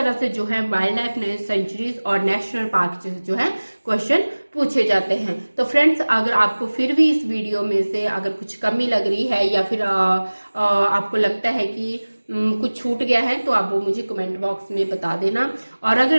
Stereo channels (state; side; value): inverted; both; correlation -1.00